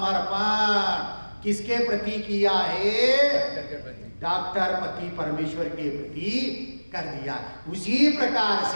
किसके प्रति किया है? डॉक्टर पति परमेश्वर के प्रति कर दिया। उसी प्रकार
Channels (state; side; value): inverted; both; correlation -1.00